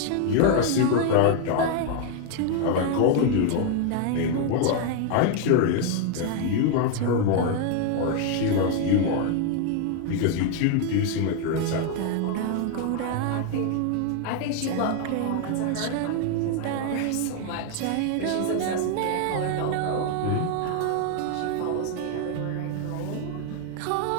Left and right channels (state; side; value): different; both; correlation 0.00